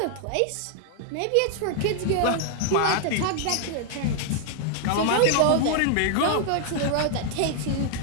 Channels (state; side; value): different; both; correlation 0.00